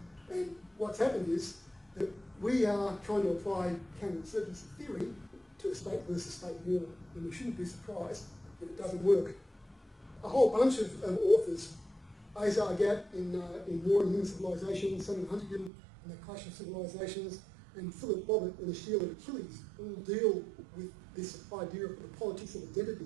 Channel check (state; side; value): drops out; left; at 15.7 s